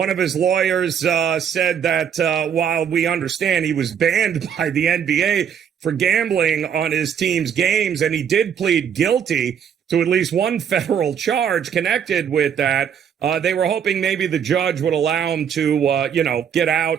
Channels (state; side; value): quieter; left; 8.1 dB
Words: of his lawyers said that while we understand he was banned by the NBA for gambling on his team's games, and he did plead guilty to at least one federal charge connected with that, they were hoping maybe the judge would allow him to, get out